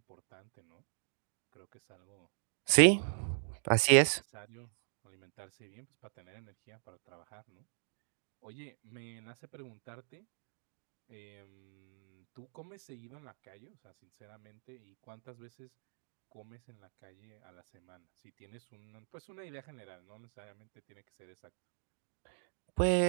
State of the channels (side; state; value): left; silent; digital silence